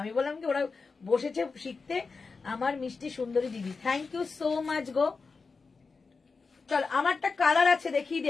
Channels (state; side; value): quieter; right; 4.5 dB